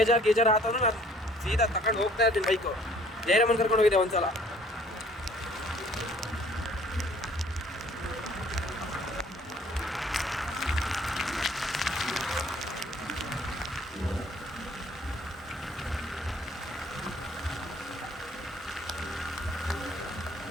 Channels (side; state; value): both; normal; correlation 0.56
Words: ಆತಂದ್ರೆ ನಾನು ಸೀದಾ ತಗೊಂಡು ಹೋಗ್ತಾ ಇರ್ತೀನಿ ಬೈಕು. ಜಯರಾಮನ್ ಕರ್ಕೊಂಡು ಹೋಗಿದ್ದೆ ಒಂದ್ಸಲ.